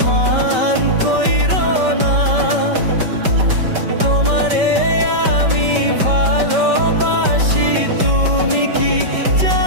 মান কইরো না, তোমারে আমি ভালোবাসি, তুমি কি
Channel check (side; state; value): left; late; 5.2 ms